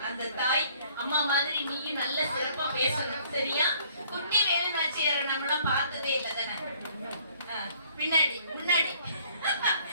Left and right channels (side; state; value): both; inverted; correlation -0.60